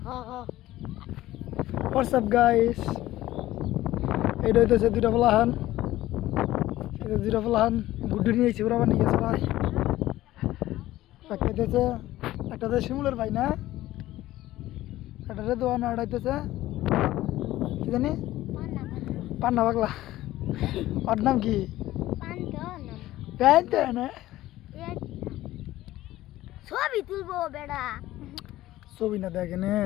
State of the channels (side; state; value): right; quieter; 15.5 dB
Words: হোয়াটসঅ্যাপ গাইস এইটা হইতেছে দুইটা ফলাহান এটা দুইটা ফলাহান গুড্ডু নিয়েছি ওরা আবার নিয়ে গেছে ভাই একটা হইতেছে একটা হচ্ছে শিমুলের ভাই না একটা হচ্ছে দোয়ান আর হইতেছে কি জানি পান্না পাগলা ওর নাম কি প্যান্ট না ছবি তুলবো বেড়া ছবি না দেখেন